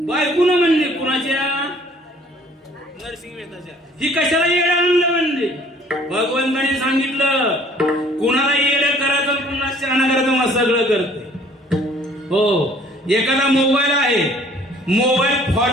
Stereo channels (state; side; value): normal; both; correlation 0.56